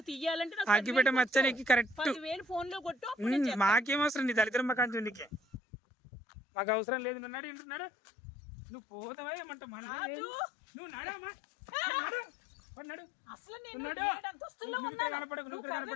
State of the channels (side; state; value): right; drops out; at 5.6 s